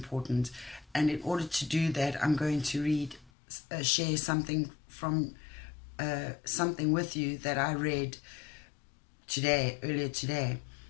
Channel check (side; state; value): right; drops out; at 3.3 s